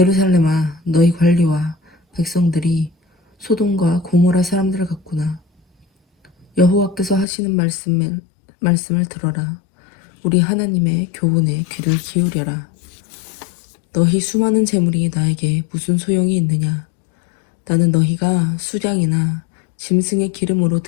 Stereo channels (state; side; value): drops out; right; at 7.2 s